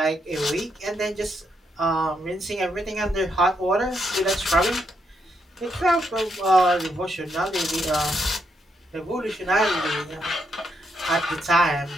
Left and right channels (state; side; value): normal; both; correlation 0.79